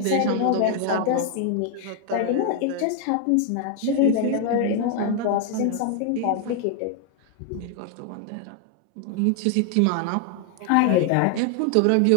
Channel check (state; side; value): different; both; correlation 0.00